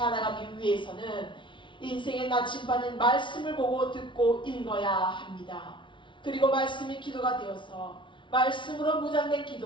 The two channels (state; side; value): late; right; 0.24 ms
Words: 위해서는 인생의 나침반인 말씀을 보고 듣고 읽어야 합니다. 그리고 말씀이 기도가 되어서 말씀으로 무장된